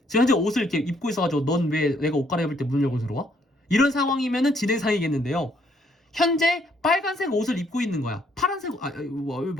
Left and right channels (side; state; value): both; normal; correlation 0.69